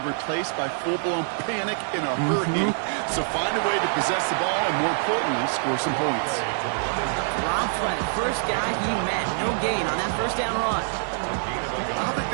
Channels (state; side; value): silent; left; 62 dB below the other